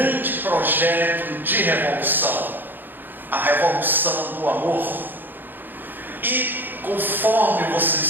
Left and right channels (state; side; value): late; left; 0.091 ms